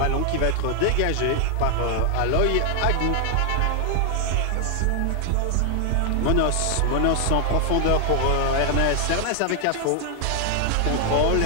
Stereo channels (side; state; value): both; different; correlation 0.00